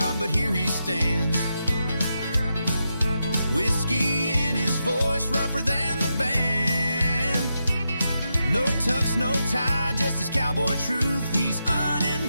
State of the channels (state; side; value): inverted; both; correlation -0.86